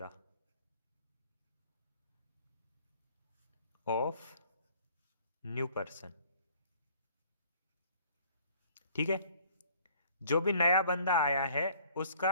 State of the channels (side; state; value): both; inverted; correlation -0.56